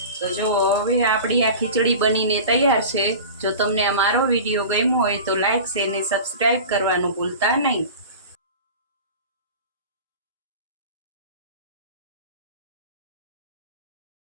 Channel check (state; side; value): inverted; both; correlation -0.35